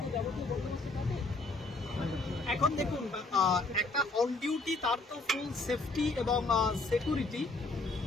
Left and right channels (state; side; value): quieter; right; 3.3 dB